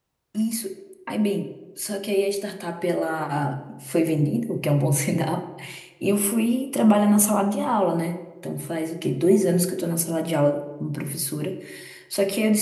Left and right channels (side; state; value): both; identical; correlation 1.00